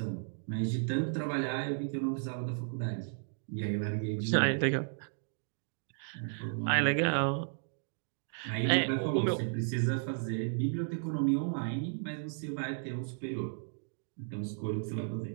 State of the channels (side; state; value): left; silent; digital silence